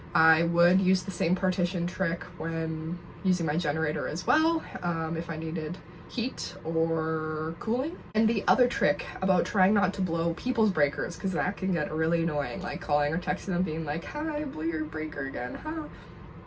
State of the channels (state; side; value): identical; both; correlation 1.00